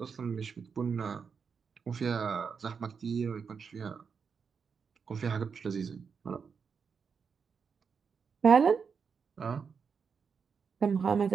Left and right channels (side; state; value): left; quieter; 6.0 dB